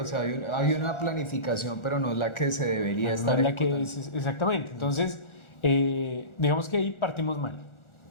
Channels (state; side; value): late; right; 1.4 ms